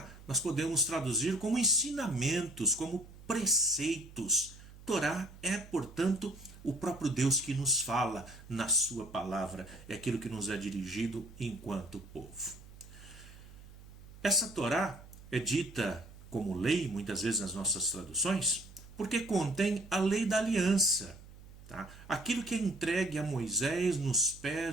nós podemos traduzir como ensinamentos, como preceitos. Torá é, portanto, o próprio Deus que nos fala na sua palavra, é aquilo que nos é dirigido enquanto povo. Essa Torá é dita como lei, muitas vezes nas nossas traduções, porque contém a lei da aliança. Tá? Aquilo que é entregue a Moisés nos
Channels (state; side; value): noise; right; hum, 19 dB below the sound